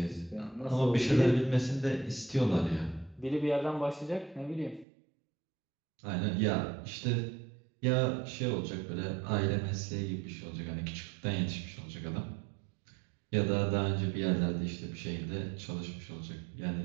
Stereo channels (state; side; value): drops out; left; at 4.9 s